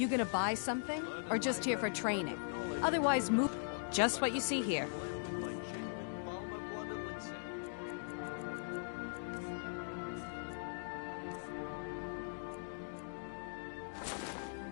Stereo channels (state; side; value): silent; right; digital silence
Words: gonna buy something? Or just here for training? Otherwise, move. Just what you see here.